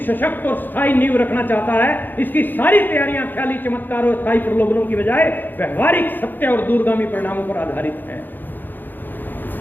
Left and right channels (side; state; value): right; late; 0.090 ms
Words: सशक्त और स्थायी नींव रखना चाहता है। इसकी सारी तैयारियां ख्याली चमत्कार और स्थायी प्रलोभनों की बजाय व्यवहारिक सत्य और दूरगामी परिणामों पर आधारित है।